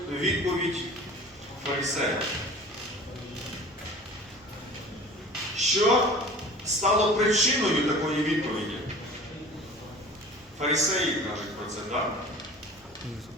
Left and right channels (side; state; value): both; normal; correlation 0.42